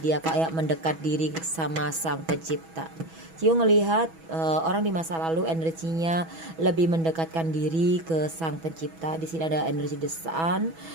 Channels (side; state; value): left; late; 6.1 ms